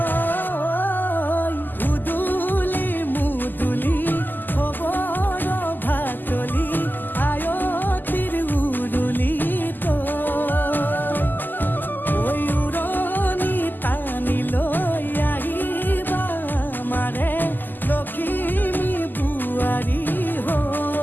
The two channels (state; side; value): late; right; 0.088 ms